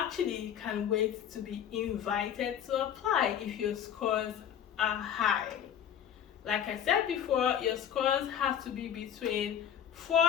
can wait to be invited to apply if your scores are high. Like I said before, your scores have to be between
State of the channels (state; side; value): quieter; right; 9.4 dB